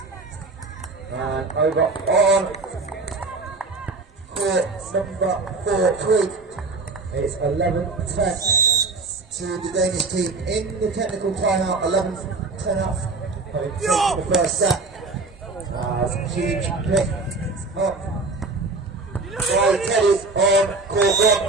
Over on court number 4-3. It's 11-10 to the Danish team in the technical timeout. 11-10 up, having taken the first set. Huge pick up by Teddy on court 1,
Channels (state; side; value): quieter; left; 3.7 dB